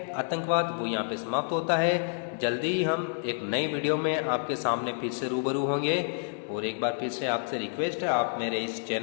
आतंकवाद, वो यहाँ पे समाप्त होता है। जल्दी ही हम एक नए वीडियो में आपके सामने फिर से रूबरू होंगे, और एक बार फिर से आपसे रिक्वेस्ट है, आप मेरे इस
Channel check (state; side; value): silent; right; 59 dB below the other